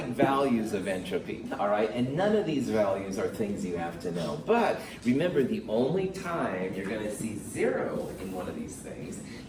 values of entropy, all right? And none of these values are things you have to know. But remember, the only time you're going to see 0 in one of these things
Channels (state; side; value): identical; both; correlation 1.00